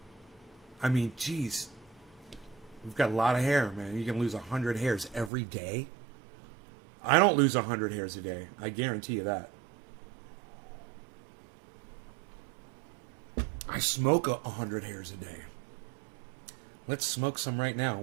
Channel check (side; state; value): left; drops out; at 5.3 s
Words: I mean, geez. We've got a lot of hair, man. You can lose 100 hairs every day. I don't lose 100 hairs a day. I guarantee you that. I smoke 100 hairs a day. Let's smoke some right now.